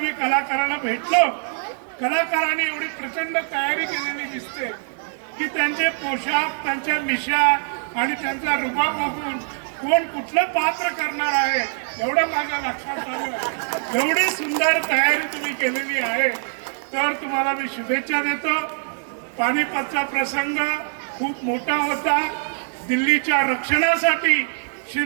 कलाकारांना भेटलो, कलाकारांनी एवढी प्रचंड तयारी केलेली दिसते की त्यांचे पोशाख, त्यांच्या मिशा आणि त्यांचा रुबाब बघून कोण कुठलं पात्र करणार आहे एवढं माझ्या लक्षात आलं. एवढी सुंदर तयारी तुम्ही केलेली आहे, तर तुम्हाला मी शुभेच्छा देतो. पानिपतचा प्रसंग खूप मोठा होता. दिल्लीच्या रक्षणासाठी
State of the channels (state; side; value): silent; left; 59 dB below the other